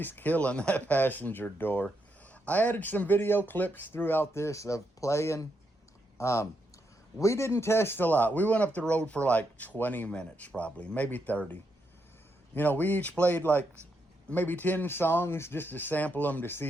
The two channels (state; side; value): normal; both; correlation 0.80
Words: killing that passenger door. I added some video clips throughout this of playing. We didn't test a lot. We went up the road for like 20 minutes probably, maybe 30. You know, we each played like maybe 10 songs just to sample them to